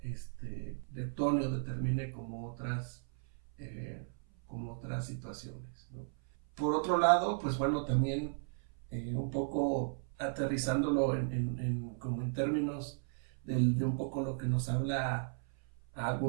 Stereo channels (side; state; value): left; silent; 54 dB below the other